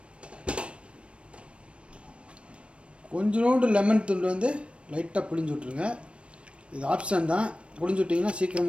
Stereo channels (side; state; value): left; late; 0.060 ms